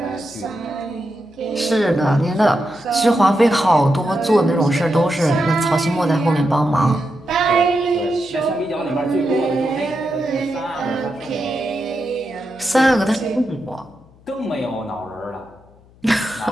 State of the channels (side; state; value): left; noise; hum, 27 dB below the sound